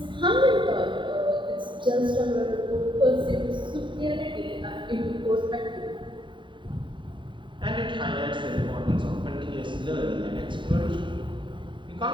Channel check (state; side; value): late; left; 0.23 ms